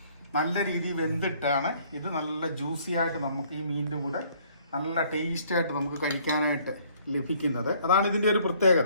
നല്ല രീതിയിൽ വെന്തിട്ടാണ് ഇത് നല്ല ജ്യൂസി ആയിട്ട് നമുക്ക് ഈ മീനിൻ്റെ കൂടെ നല്ല ടേസ്റ്റായിട്ട് നമുക്ക് കഴിക്കാനായിട്ട് ലഭിക്കുന്നത്. അതാണ് ഇതിൻ്റെ ഒരു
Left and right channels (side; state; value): both; inverted; correlation -0.61